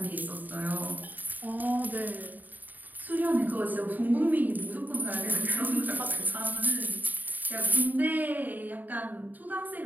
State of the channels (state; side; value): late; left; 0.085 ms